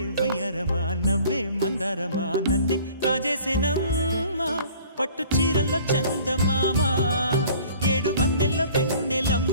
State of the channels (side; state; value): both; inverted; correlation -0.50